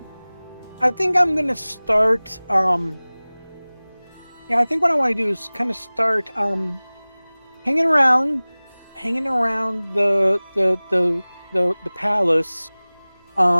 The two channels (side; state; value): both; inverted; correlation -1.00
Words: I think I'm gonna start. I think what I want to do is kind of start hanging around the palace,